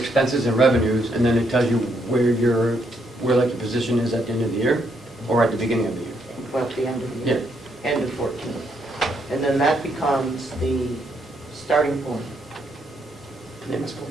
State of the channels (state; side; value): normal; both; correlation 0.75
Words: and revenues, and then it tells you where like your position is at the end of the year, or at the beginning of the year? Well, at the end of the year, end of 14. And then that becomes the starting point, The MS